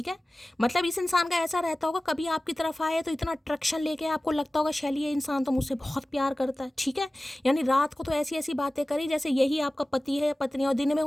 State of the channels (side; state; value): both; normal; correlation 0.97